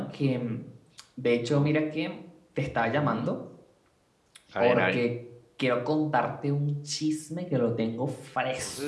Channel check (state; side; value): identical; both; correlation 1.00